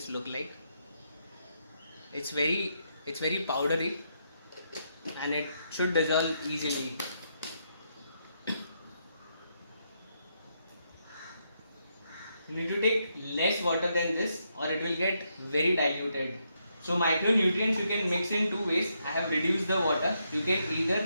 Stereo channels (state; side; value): inverted; both; correlation -0.79